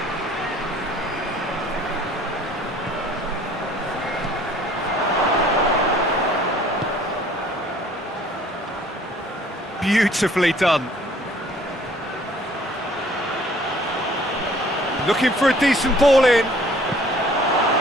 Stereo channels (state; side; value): normal; both; correlation 0.55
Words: Beautifully done. Looking for a decent ball in.